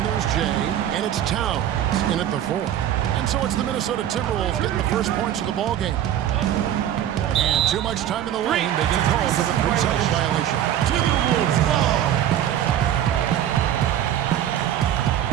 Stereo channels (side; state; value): left; quieter; 11.1 dB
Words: there's Jay, and it's Towns in at the four. And so it's the Minnesota Timberwolves getting the first points of the ball game. And too much time in the lane, they get called for the 3-second violation. Timberwolves ball.